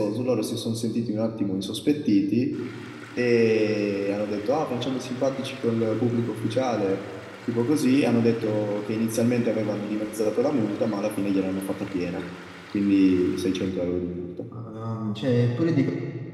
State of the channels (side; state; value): both; identical; correlation 1.00